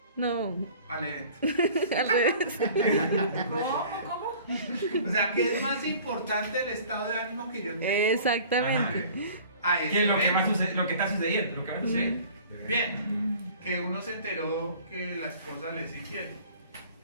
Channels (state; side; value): inverted; both; correlation -0.47